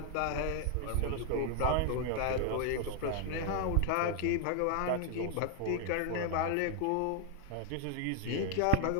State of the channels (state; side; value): different; both; correlation 0.00